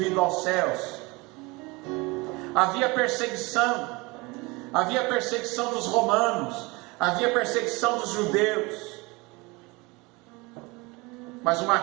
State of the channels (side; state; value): left; quieter; 24.9 dB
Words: aos céus. Havia perseguição dos romanos, havia perseguição dos judeus. Mas uma